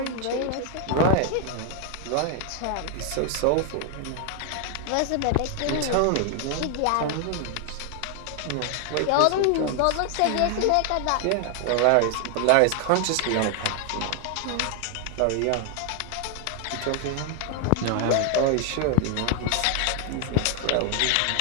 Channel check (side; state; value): both; different; correlation 0.00